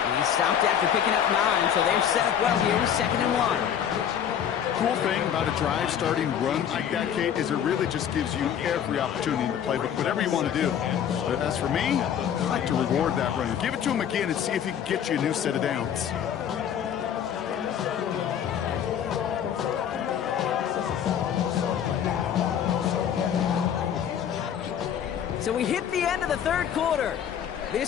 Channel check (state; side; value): quieter; right; 9.0 dB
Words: He stopped after picking up 9, so they're set up well here, 2nd and 1. Cool thing about a drive starting run like that, Kate, is it really just gives you every opportunity in the playbook, whatever you want to do. But as for me, I like to reward that runner. Give it to him again and see if he can get you a new set of downs. So we hit the end of the 3rd quarter.